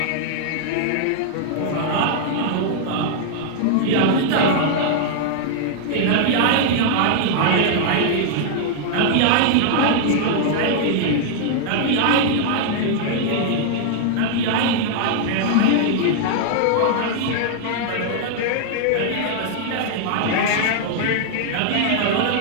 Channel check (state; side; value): different; both; correlation -0.01